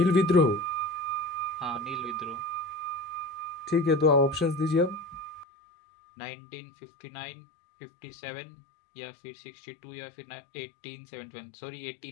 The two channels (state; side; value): drops out; right; at 5.5 s